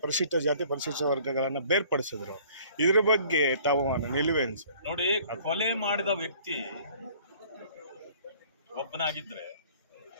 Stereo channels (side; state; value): both; inverted; correlation -0.54